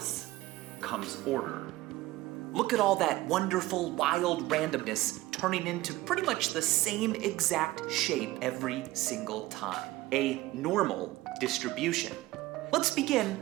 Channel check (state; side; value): quieter; left; 18.0 dB